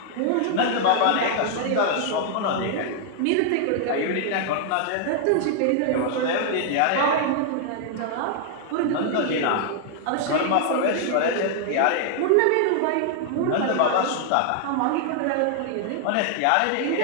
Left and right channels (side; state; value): both; different; correlation 0.00